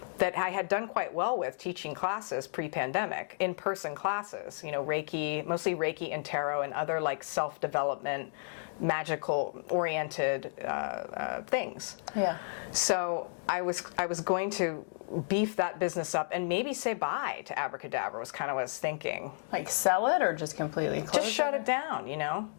that I had done quite well with, teaching classes pre-pandemic, in-person classes, Reiki, mostly Reiki and tarot and other like self-development, magical oriented things. Yeah. So I was going to beef that business up and maybe say bye to Abracadabra was kind of what I was thinking. Like sell it or just completely close Just shut it down,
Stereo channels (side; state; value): right; silent; digital silence